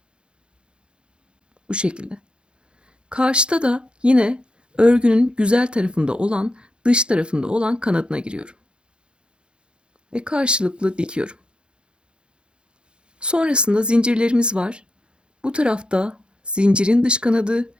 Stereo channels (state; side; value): late; left; 0.054 ms